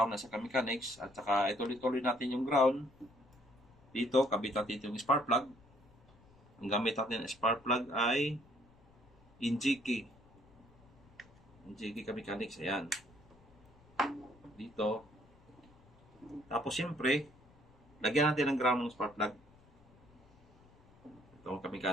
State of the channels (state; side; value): noise; left; rumble, 27 dB below the sound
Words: na sa kamechanics. At saka ituloy-tuloy natin yung ground. Dito, kabit natin yung spark plug. Ang gamit natin ng spark plug ay Injiki. Injiki kamechanics. Ayan. Dito. Tapos siyempre, lagyan natin ng ground ng spark plug. Itong